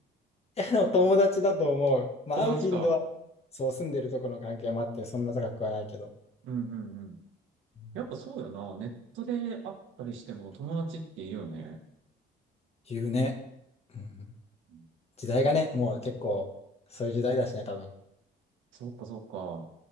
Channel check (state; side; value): normal; both; correlation 0.48